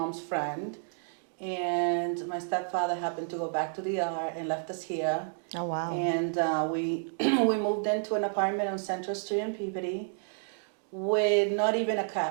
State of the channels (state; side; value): silent; left; digital silence